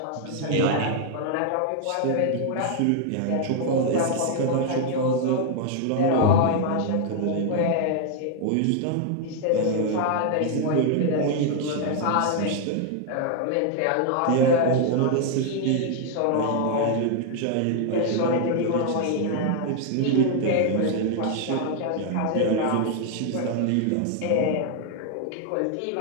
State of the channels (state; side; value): different; both; correlation 0.00